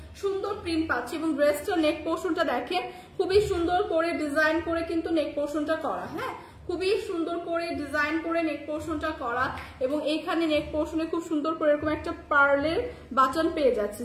সুন্দর প্রিন্ট পাচ্ছি, এবং ড্রেসটার নেক পোর্শনটা দেখেন খুবই সুন্দর করে ডিজাইন করে কিন্তু নেক পোর্শনটা করা। হ্যাঁ, খুবই সুন্দর করে ডিজাইন করে নেক পোর্শনটা করা, এবং এইখানে নেক পোর্শনে খুব সুন্দর করে এরকম একটা পার্লের বাটন পেয়ে যাচ্ছে,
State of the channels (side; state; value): both; identical; correlation 1.00